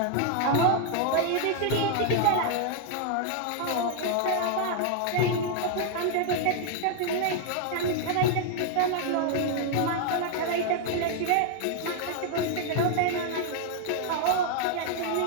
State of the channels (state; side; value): different; both; correlation 0.00